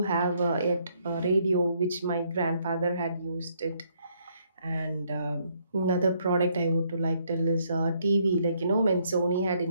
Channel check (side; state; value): both; inverted; correlation -0.70